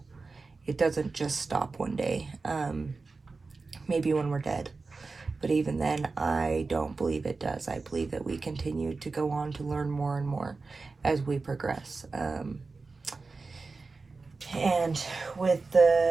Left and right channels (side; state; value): left; quieter; 4.0 dB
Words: It doesn't just stop one day. Maybe when we're dead. But even then, I don't believe it does. I believe that we continue to go on to learn more and more as we progress. And with